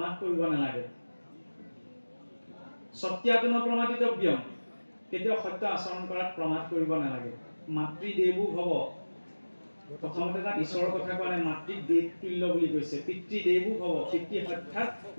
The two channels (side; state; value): both; inverted; correlation -1.00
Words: কৰিব নালাগে সত্যাত ন প্ৰমাদিতব্যম কেতিয়াও সত্য আচৰণ কৰাত প্ৰমাদ কৰিব নালাগে মাতৃদেৱো ভৱ প্ৰথমতে তাত ঈশ্বৰৰ কথা কোৱা নাই মাতৃক দেৱ তুল্য বুলি কৈছে পিতৃদেৱো ভৱ পিতৃ সাক্ষাৎ